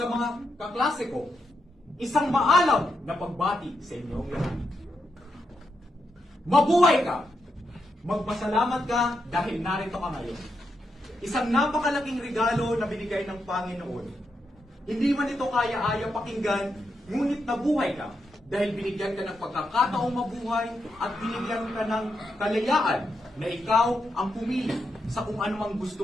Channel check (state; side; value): normal; both; correlation 0.83